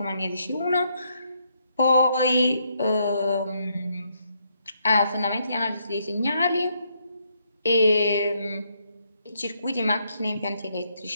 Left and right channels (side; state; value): both; inverted; correlation -0.75